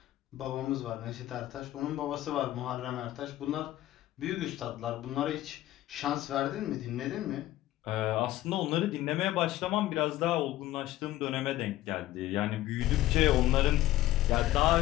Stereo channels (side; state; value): right; quieter; 15.1 dB